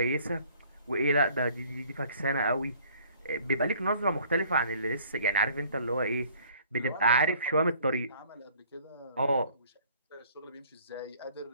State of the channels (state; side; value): inverted; both; correlation -0.56